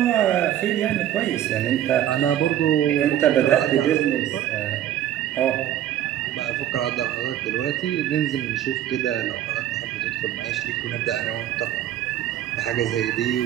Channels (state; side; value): quieter; left; 11.6 dB